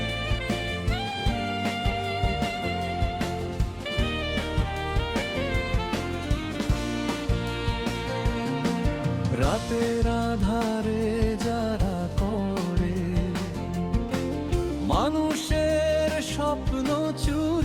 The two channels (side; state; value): both; identical; correlation 1.00